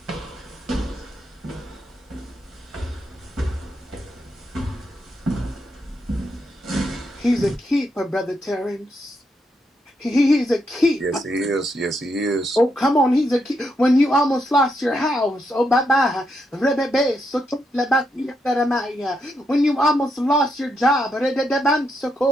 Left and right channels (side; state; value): both; normal; correlation 0.80